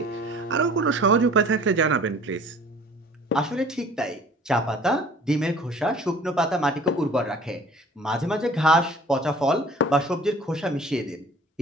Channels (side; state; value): both; normal; correlation 0.49